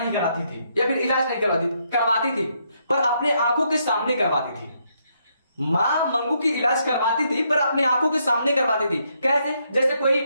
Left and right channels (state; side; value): inverted; both; correlation -0.76